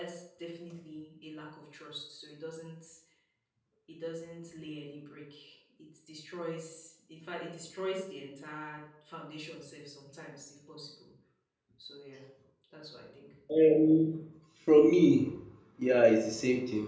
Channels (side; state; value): both; identical; correlation 1.00